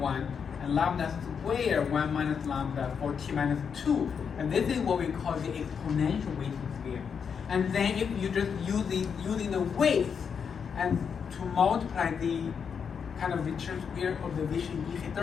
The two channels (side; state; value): right; quieter; 6.7 dB